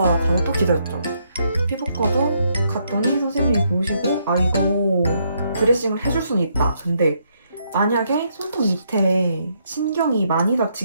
가서 또 기다렸죠. 피부과도 갔더니 선생님이 보시고 이거 드레싱을 해줄 수는 있다. 근데 만약에 손톱 밑에 신경이 많이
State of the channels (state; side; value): inverted; both; correlation -0.74